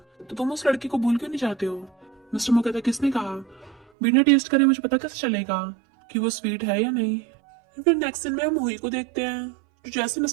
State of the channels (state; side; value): drops out; left; at 3.9 s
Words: तो तुम उस लड़की को भूल क्यों नहीं जाते हो। मिस्टर मो कहता है किसने कहा, बिना टेस्ट करे मुझे पता कैसे चलेगा कि वो स्वीट है या नहीं। फिर नेक्स्ट दिन में हम हुई को देखते हैं जो जैसे